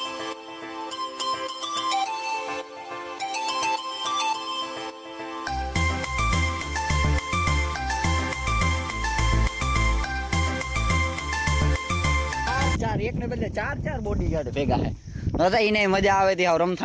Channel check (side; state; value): both; identical; correlation 1.00